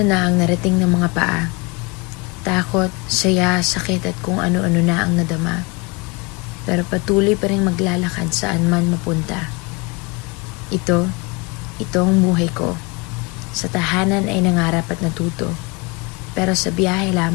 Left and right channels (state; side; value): quieter; right; 27.8 dB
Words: ang narating ng mga paa. Takot, saya, sakit at kung ano-ano na ang nadama. Pero patuloy pa rin maglalakad saan man mapunta. Ito ang buhay ko. Sa tahanan ay nangarap at natuto. Pero sa biyahe